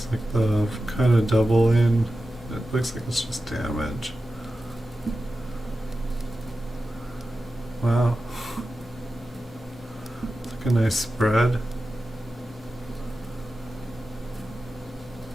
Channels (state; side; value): normal; both; correlation 0.93